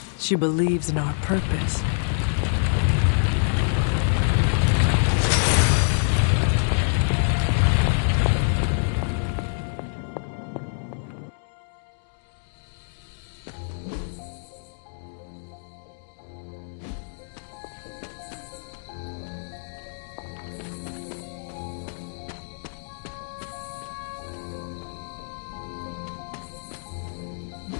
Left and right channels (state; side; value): silent; right; digital silence